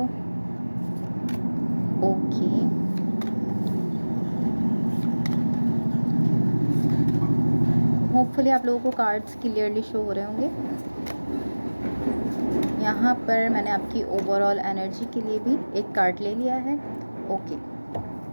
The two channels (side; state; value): both; inverted; correlation -1.00